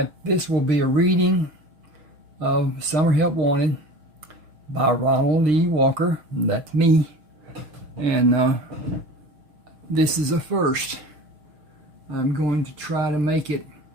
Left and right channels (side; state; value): left; late; 6.2 ms